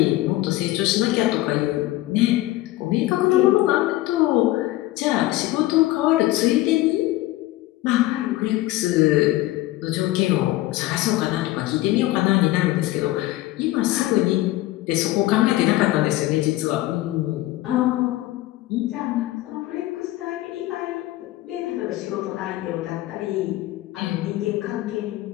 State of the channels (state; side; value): quieter; right; 17.0 dB